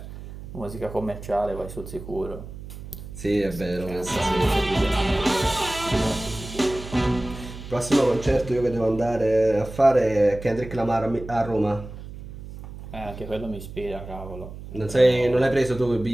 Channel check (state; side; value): noise; right; hum, 13 dB below the sound